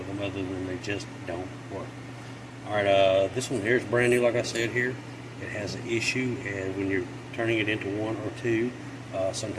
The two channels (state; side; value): identical; both; correlation 1.00